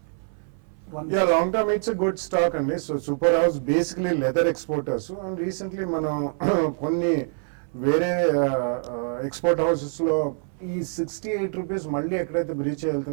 Long term it's good stock అండి. So super house basically leather exporters and recently మనం కొన్ని వేరే ఎక్స్పోర్ట్ హౌసెస్ లో ఈ 68 రూపీస్ మళ్ళీ ఎక్కడైతే బ్రీచ్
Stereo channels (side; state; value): left; silent; 58 dB below the other